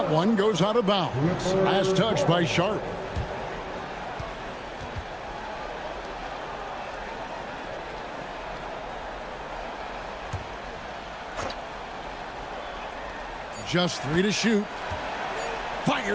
one goes out of bounds. Last touch by Sharp. Just 3 to shoot.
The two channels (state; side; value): identical; both; correlation 1.00